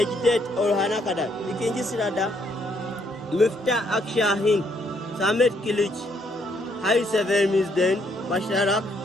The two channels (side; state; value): both; normal; correlation 0.71